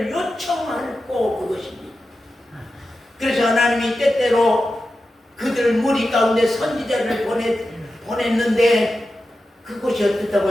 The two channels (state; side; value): normal; both; correlation 0.92